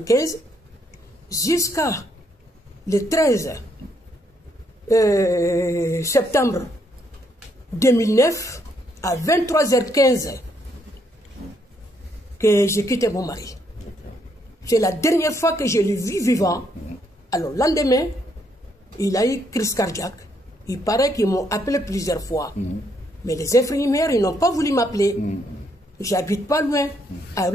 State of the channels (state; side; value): normal; both; correlation 0.73